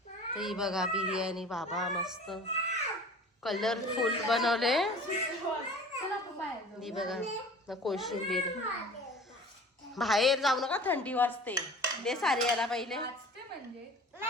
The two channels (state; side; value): normal; both; correlation 0.43